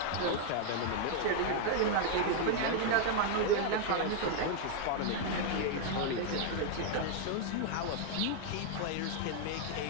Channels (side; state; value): both; different; correlation 0.00